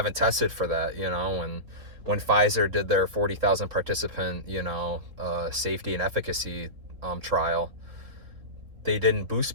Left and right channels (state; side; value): late; left; 3.5 ms